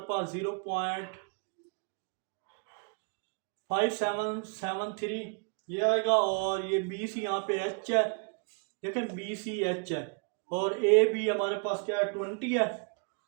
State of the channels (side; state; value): left; quieter; 37.8 dB